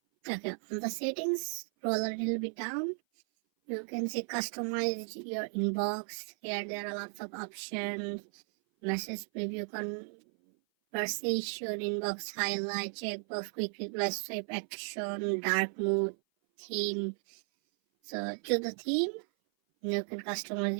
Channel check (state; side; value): silent; left; 54 dB below the other